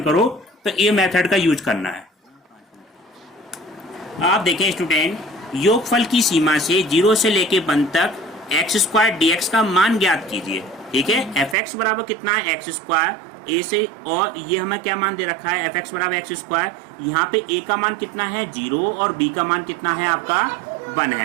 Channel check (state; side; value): drops out; left; at 11.6 s